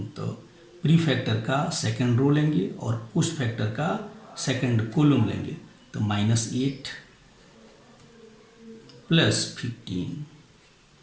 तो प्री फैक्टर का सेकंड रो लेंगे और पोस्ट फैक्टर का सेकंड कॉलम लेंगे। तो -8 प्लस 15।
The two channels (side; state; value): both; identical; correlation 1.00